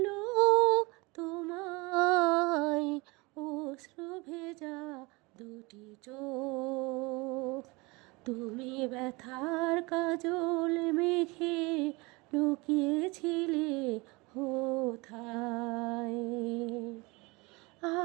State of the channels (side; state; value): left; quieter; 25.2 dB